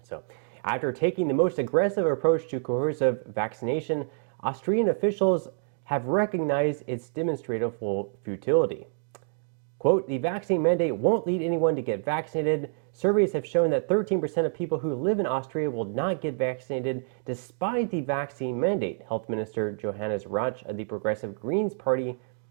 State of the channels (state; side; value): silent; left; 60 dB below the other